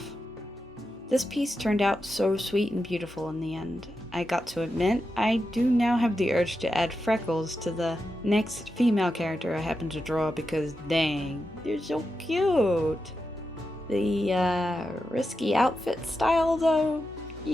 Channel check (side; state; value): both; normal; correlation 0.88